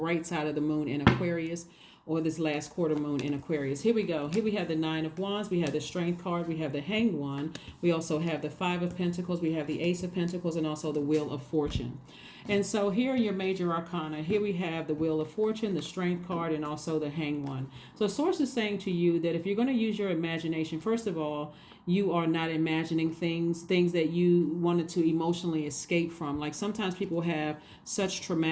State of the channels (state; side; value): identical; both; correlation 1.00